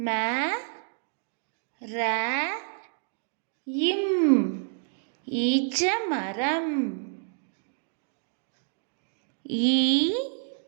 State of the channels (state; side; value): silent; left; digital silence